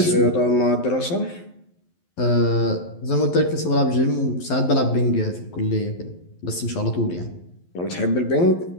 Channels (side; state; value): right; late; 11 ms